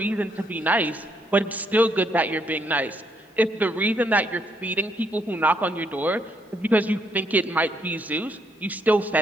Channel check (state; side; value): normal; both; correlation 0.73